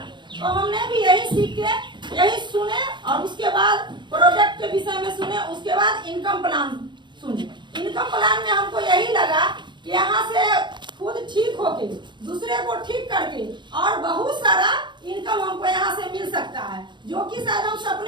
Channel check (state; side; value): late; left; 0.22 ms